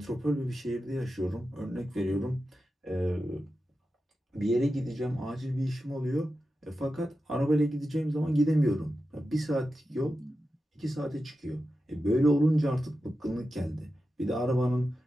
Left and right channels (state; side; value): normal; both; correlation 0.91